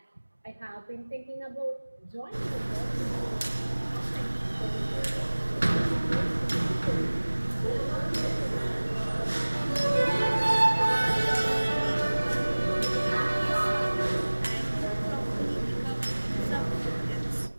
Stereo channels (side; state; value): both; inverted; correlation -1.00